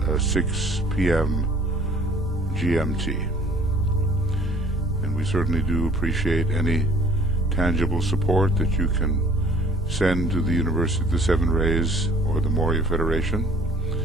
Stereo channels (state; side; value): normal; both; correlation 0.52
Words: 6 p.m. GMT. And we certainly do appreciate any tangible support that you can send to the University of the Seven Rays or the Moria Federation,